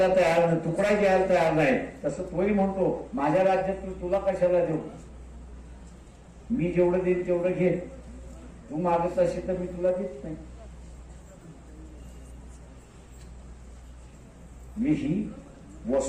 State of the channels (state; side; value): identical; both; correlation 1.00